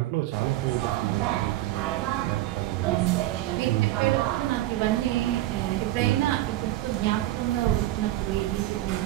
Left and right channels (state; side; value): quieter; left; 15.5 dB